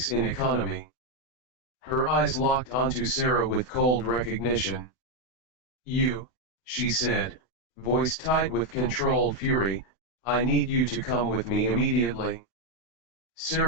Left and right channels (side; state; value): right; late; 32 ms